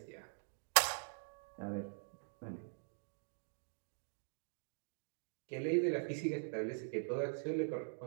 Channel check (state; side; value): silent; left; digital silence